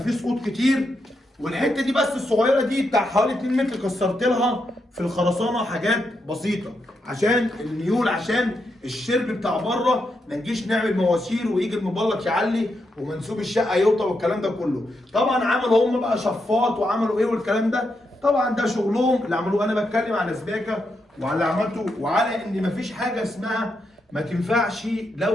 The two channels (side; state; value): both; normal; correlation 0.83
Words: سقوط كتير، والحته دي بس الصغيره دي بتاع حوالي 2 متر كسرت لها في الخرسانه حاجات بسيطه عشان الميول، عشان الشرب بتاع بره ما نجيش نعمل مواسير ويجي المبلط يعلي ومنسوب الشقه يوطى والكلام ده كله. طبعا عملوا هم بقى شفاط وعملوا ايه والكلام ده، طبعا ده شغلهم اللي عملوه. انا بتكلم على سباكه وعلى اللي عملته وعلى ان مفيش حاجه اسمها ما تنفعش